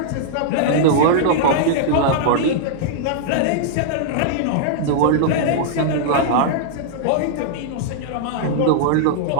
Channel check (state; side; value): different; both; correlation -0.01